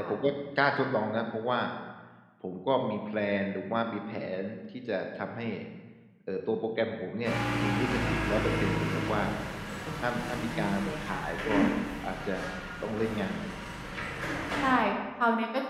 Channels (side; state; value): both; identical; correlation 1.00